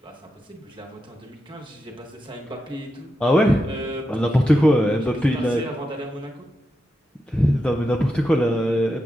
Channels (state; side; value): normal; both; correlation 0.87